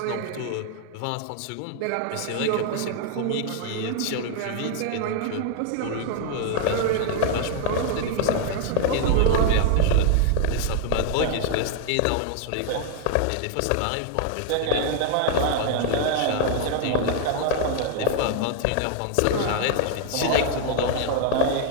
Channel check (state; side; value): different; both; correlation 0.00